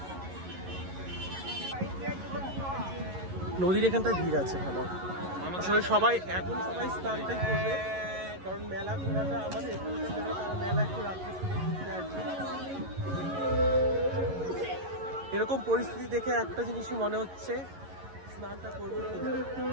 নদীর এখানটায় ভিড় আছে ভালো। আসলে সবাই স্নানটাই করবে, কারণ মেলা ঘোরাটা আমাদের এখানকার মেলা, তারা মেলা একটু রাত্রে ঘুরতে আসছে। এরকম পরিস্থিতি দেখে একটা জিনিসই মনে হচ্ছে, স্নানটা করবো।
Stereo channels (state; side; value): late; left; 11 ms